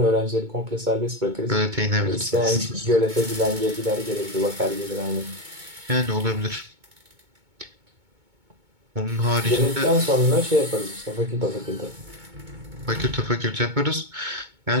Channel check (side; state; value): left; late; 2.2 ms